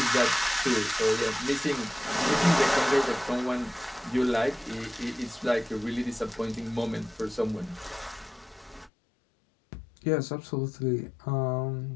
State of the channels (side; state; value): right; drops out; at 8.9 s